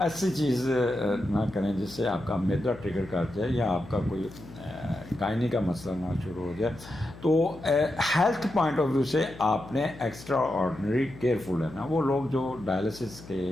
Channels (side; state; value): left; noise; hum, 17 dB below the sound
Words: چیز نہ کریں جس سے آپ کا میدا ٹریگر کر جائے یا آپ کا کوئی گائنی کا مسئلہ نہ شروع ہو جائے. تو ہیلتھ پوائنٹ آف ویو سے آپ نے ایکسٹرا آرڈنری کیئرفل ہے نا. وہ لوگ جو ڈائلسس کے